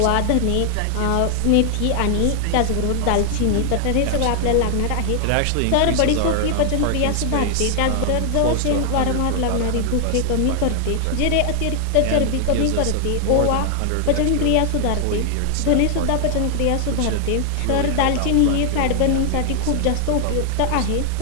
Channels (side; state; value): both; different; correlation 0.00